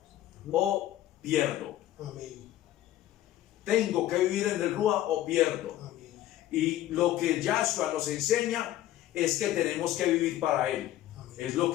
o pierdo. Amén. Tengo que vivir en el Ruach o pierdo. Amén. Y lo que Yahshua nos enseña es que tenemos que vivir para Él. Amén. Es lo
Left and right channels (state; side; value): quieter; right; 13.6 dB